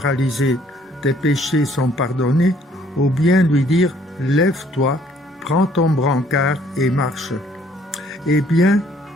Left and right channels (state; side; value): normal; both; correlation 0.62